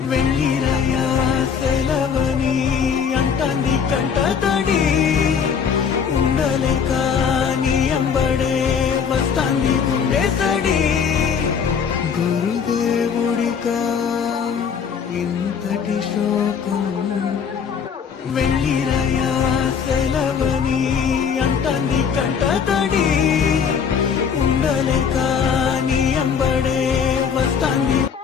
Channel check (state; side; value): quieter; right; 6.8 dB